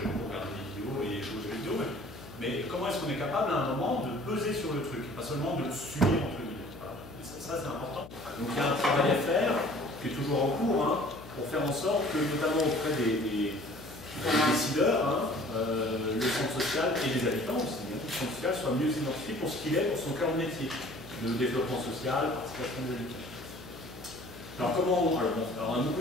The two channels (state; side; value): noise; left; hum, 17 dB below the sound